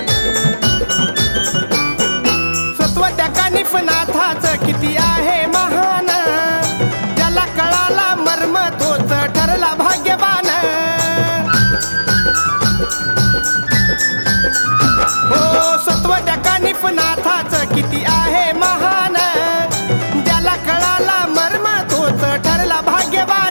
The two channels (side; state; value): both; inverted; correlation -1.00